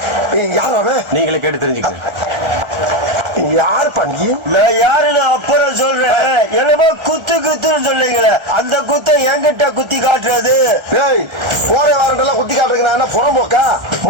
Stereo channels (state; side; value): late; left; 1.4 ms